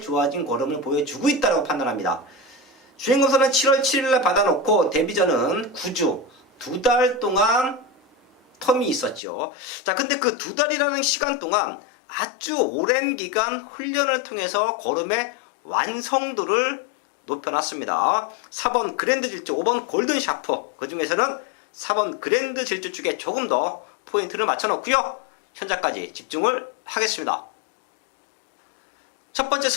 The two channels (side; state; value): right; drops out; at 9.2 s